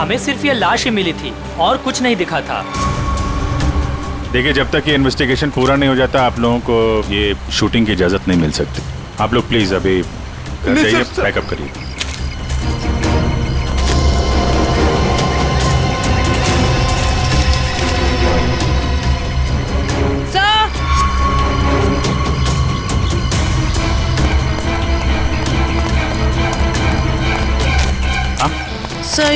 सिर्फ ये लाश ही मिली थी और कुछ नहीं दिखा था। देखिए, जब तक ये इन्वेस्टिगेशन पूरा नहीं हो जाता आप लोगों को ये शूटिंग की इजाजत नहीं मिल सकती। आप लोग प्लीज अभी घर जाइए, पैकअप करिए। सर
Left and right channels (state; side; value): identical; both; correlation 1.00